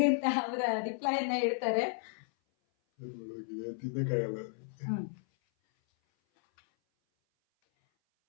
ಅಂತ ಅವರ ರಿಪ್ಲೈಯನ್ನ ಹೇಳ್ತಾರೆ.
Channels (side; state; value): right; silent; 55 dB below the other